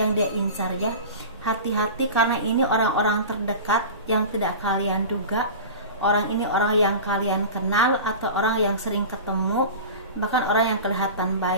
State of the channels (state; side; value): inverted; both; correlation -0.32